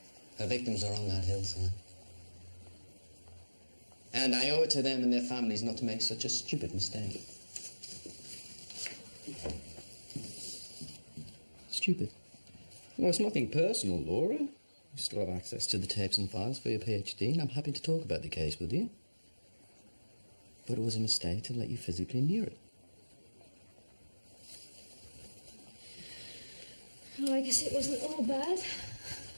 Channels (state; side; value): inverted; both; correlation -1.00